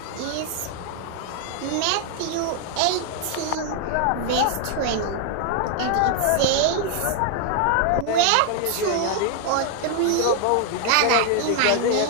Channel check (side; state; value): both; different; correlation 0.00